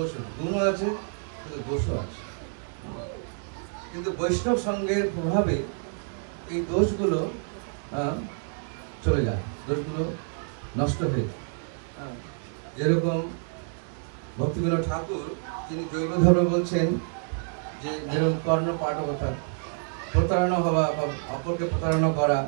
আছে, গুণও আছে কিন্তু দোষও আছে। কিন্তু বৈষ্ণব সঙ্গের প্রভাবে এই দোষগুলো চলে যায়, দোষগুলো নষ্ট হয়ে যায়। যেরকম ভক্তিবিনোদ ঠাকুর, তিনি জৈব ধর্ম বলছেন যে যেরকম কর্ণ পাঠকতা, প্রতারণা হওয়া বা অপরকে প্রতারণা করা,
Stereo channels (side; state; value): left; silent; 59 dB below the other